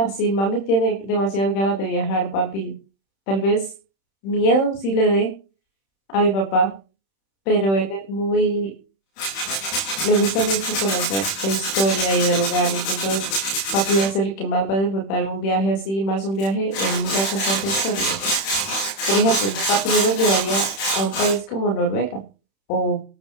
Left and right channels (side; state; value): right; late; 31 ms